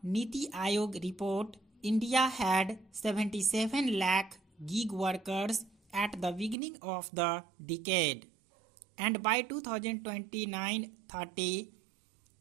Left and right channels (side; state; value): left; drops out; at 6.6 s